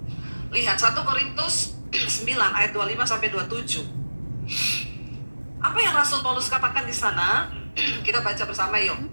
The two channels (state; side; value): inverted; both; correlation -1.00